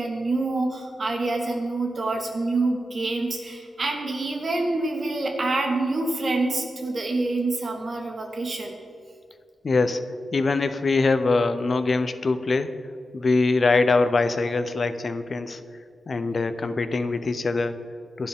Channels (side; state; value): both; normal; correlation 0.90